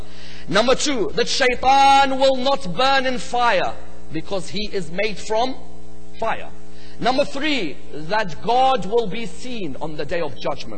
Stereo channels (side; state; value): both; identical; correlation 1.00